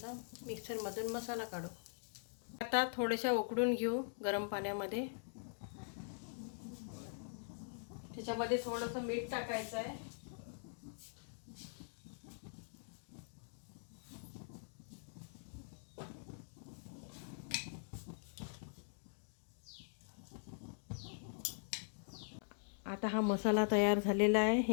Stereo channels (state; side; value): silent; right; digital silence